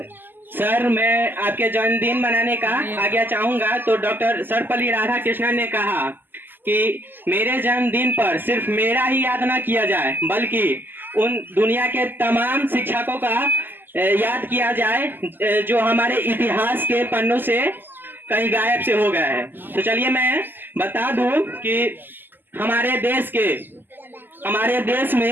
सर मैं आपके जन्मदिन मनाने का आज्ञा चाहूंगा। तो डॉक्टर सर्वपल्ली राधाकृष्णन ने कहा कि मेरे जन्मदिन पर सिर्फ मेरा ही याद ना किया जाए, बल्कि उन दुनिया के तमाम शिक्षकों का याद किया जाए जो हमारे इतिहास के पन्नों से कहीं गायब से हो गया है। तो चलिए मैं बता दूं कि हमारे देश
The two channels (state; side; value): late; left; 0.092 ms